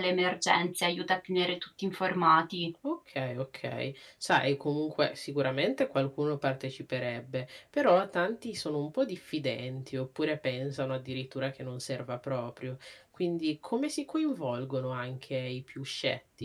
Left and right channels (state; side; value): identical; both; correlation 1.00